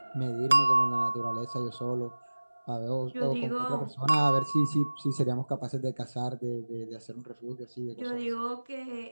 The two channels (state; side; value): inverted; both; correlation -1.00